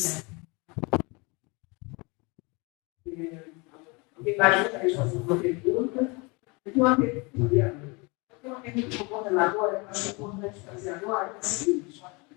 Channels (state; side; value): quieter; right; 28.5 dB